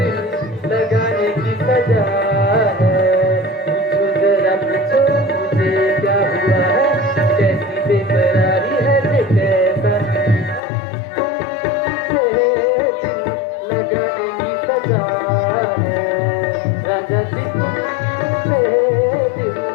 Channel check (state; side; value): drops out; right; at 10.6 s